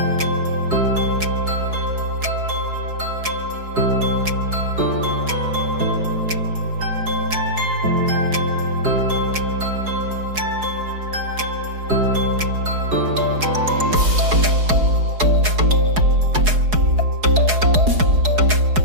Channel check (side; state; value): left; late; 4.7 ms